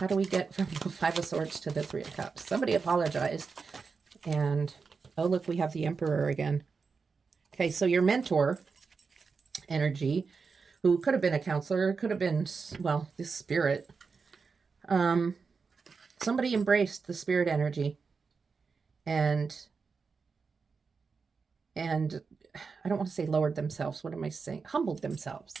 do we get from the Five of Swords to the Three of Cups? Somebody apologized. And, oh, look, we have the Emperor again. Okay, so your mentor energy, who could have been a counselor, could have been, well, this spirit. Somebody embraced the spirit energy and I don't want to say lowered themselves. What am I saying? Humbled themselves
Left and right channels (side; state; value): left; quieter; 5.0 dB